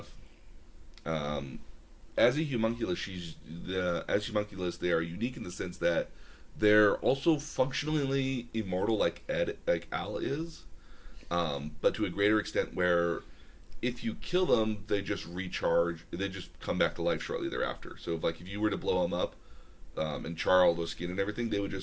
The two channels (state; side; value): identical; both; correlation 1.00